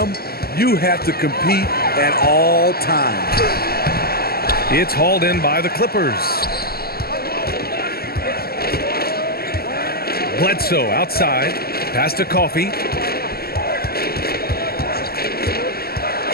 You have to compete at all times. It's hauled in by the Clippers. Bledsoe outside. Pass to Coffey.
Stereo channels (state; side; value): late; right; 0.45 ms